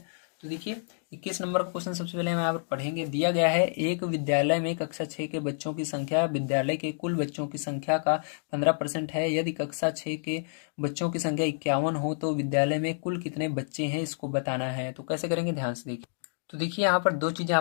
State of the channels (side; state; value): right; silent; digital silence